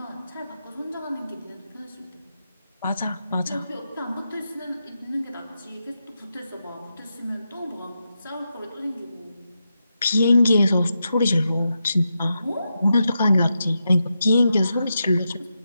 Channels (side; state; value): both; inverted; correlation -0.87